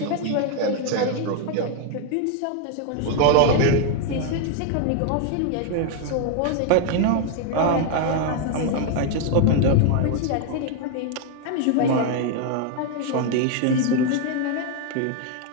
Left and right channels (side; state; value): both; different; correlation 0.00